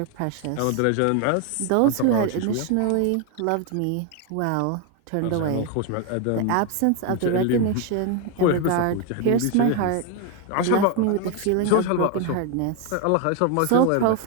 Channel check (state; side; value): different; both; correlation 0.01